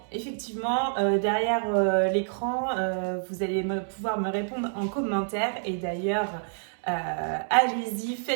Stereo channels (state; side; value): silent; left; 60 dB below the other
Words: effectivement, derrière l'écran, vous allez pouvoir me répondre en commentaire. Et d'ailleurs, allez-y,